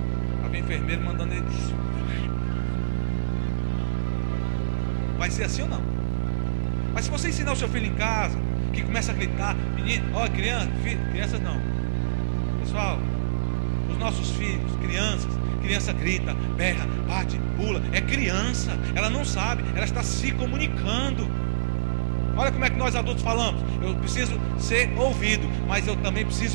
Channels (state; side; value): silent; left; digital silence